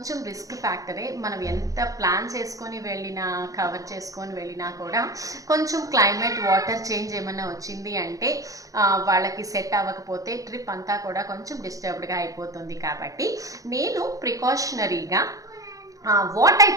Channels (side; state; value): left; late; 0.17 ms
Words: రిస్క్ ఫ్యాక్టరే. మనం ఎంత ప్లాన్ చేసుకొని వెళ్ళినా, కవర్ చేసుకొని వెళ్ళినా కూడా కొంచెం క్లైమేట్, వాటర్ చేంజ్ ఏమన్నా వచ్చింది అంటే వాళ్ళకి సెట్ అవ్వకపోతే ట్రిప్ అంతా కూడా కొంచెం డిస్టర్బ్డ్గా అయిపోతుంది. కాబట్టి నేను ప్రికాషనరీగా what I